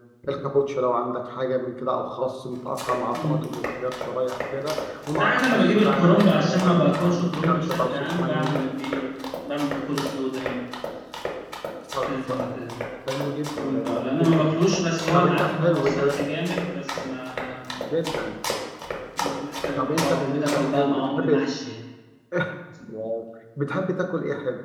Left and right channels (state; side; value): identical; both; correlation 1.00